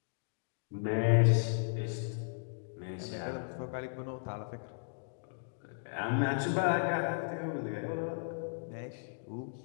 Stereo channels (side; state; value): right; silent; digital silence